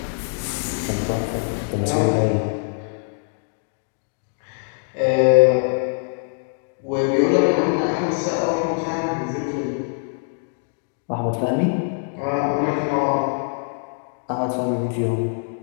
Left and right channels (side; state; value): right; silent; digital silence